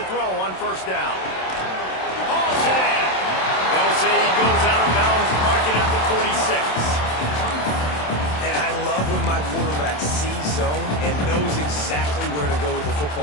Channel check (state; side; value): late; right; 27 ms